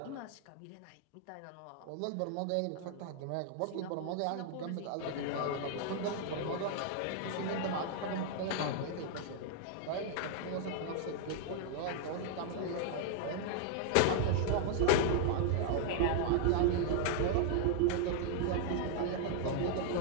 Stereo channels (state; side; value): different; both; correlation 0.00